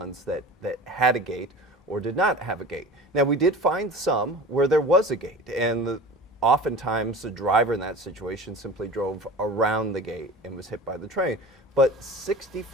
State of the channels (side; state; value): both; normal; correlation 0.37